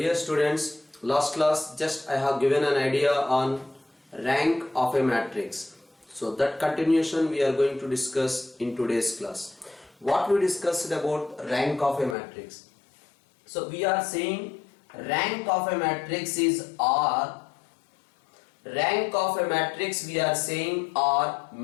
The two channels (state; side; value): drops out; right; at 12.2 s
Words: students, last class just I have given an idea on rank of a matrix. So that continuation we are going to discuss in today's class. What we discussed about rank of a matrix. So we are saying rank of a matrix is R. Rank of a matrix we are saying R